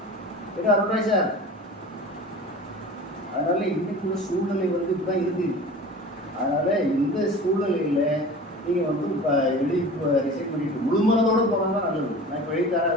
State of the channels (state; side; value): normal; both; correlation 0.38